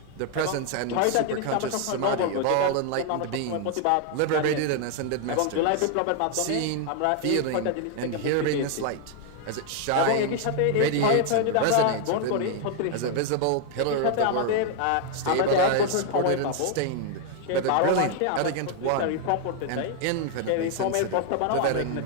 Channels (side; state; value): both; different; correlation 0.00